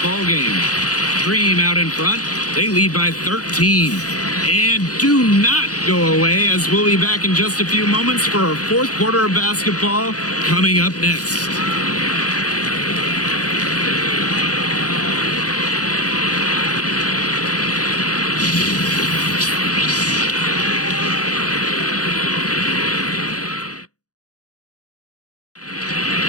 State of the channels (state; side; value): late; right; 0.67 ms